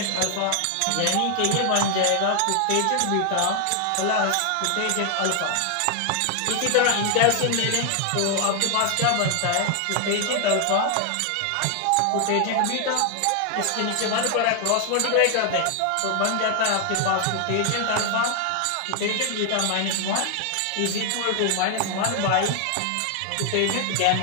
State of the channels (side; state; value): both; different; correlation 0.00